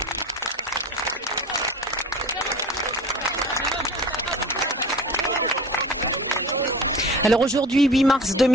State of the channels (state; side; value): normal; both; correlation 0.37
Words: Alors aujourd'hui, 8 mars